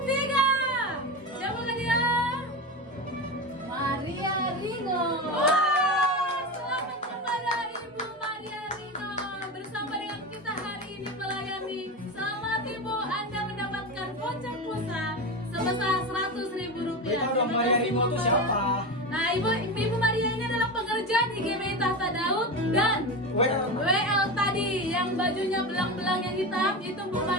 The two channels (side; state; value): both; normal; correlation 0.21